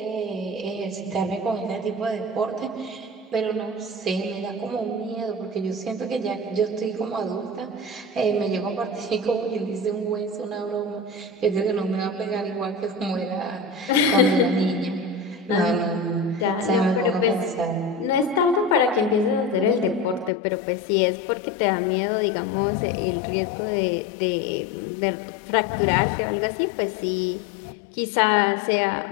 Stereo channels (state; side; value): drops out; right; at 20.3 s